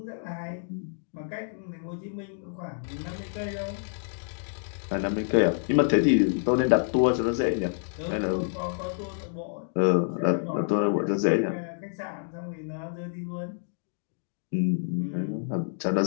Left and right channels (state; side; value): silent; right; digital silence